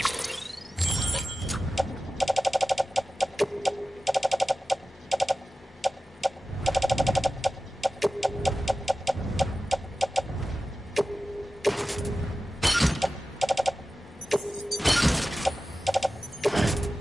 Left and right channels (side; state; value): both; normal; correlation 0.95